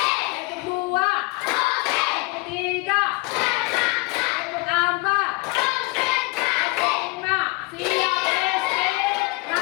dua. Tepuk tiga. Tepuk empat. Tepuk lima. Siap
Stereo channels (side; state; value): right; quieter; 24.9 dB